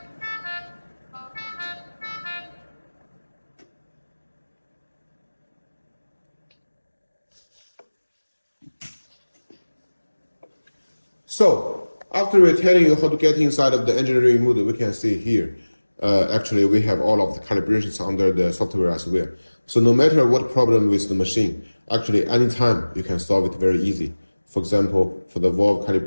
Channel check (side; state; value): both; inverted; correlation -1.00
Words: So, after we're telling you how to get inside of the engineering mode, we can see here, actually we have all of the calibrations under the software as well. So no matter what problem with the machine, actually anytime you can solve it very easy. For example, for the valve